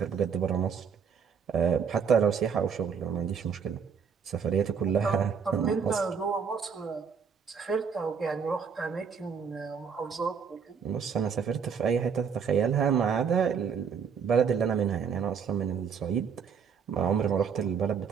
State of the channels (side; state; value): left; quieter; 6.5 dB